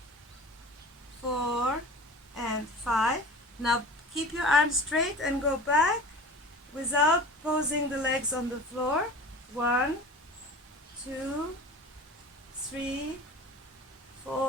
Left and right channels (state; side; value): normal; both; correlation 0.38